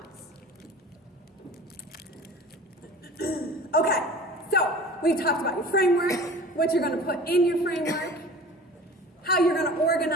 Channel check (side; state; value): both; normal; correlation 0.41